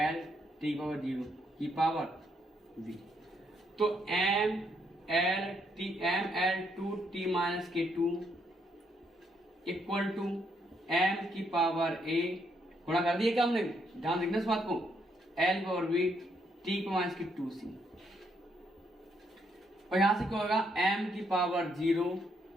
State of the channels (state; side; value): normal; both; correlation 0.74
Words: टी पावर 0 की पावर वी। तो M L two T minus K two equal to M की पावर ए गुणा कर दिया क्या हमने? ध्यान देखना इस बात को। L power we T minus की 2c। और यहां से क्या होगा? एम की पावर 0